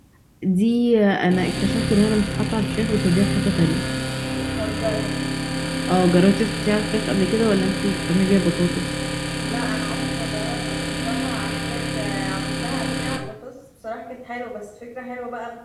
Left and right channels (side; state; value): both; identical; correlation 1.00